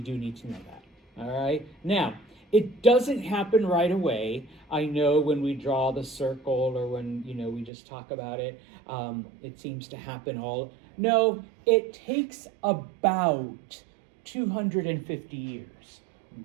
do need to know that. All right, now it doesn't happen right away. I know when we draw the circle or when we just talk about it, it seems to happen all. No, it takes about 250 years.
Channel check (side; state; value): left; drops out; at 7.7 s